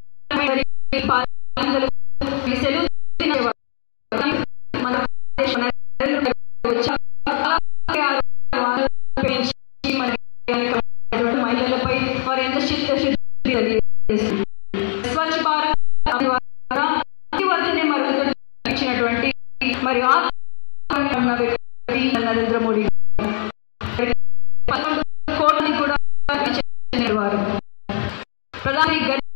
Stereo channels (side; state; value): right; silent; digital silence